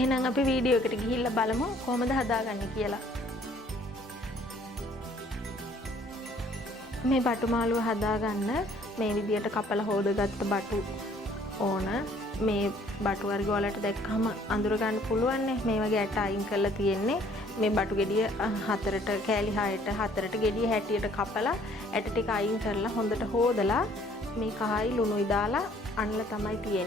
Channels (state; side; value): normal; both; correlation 0.59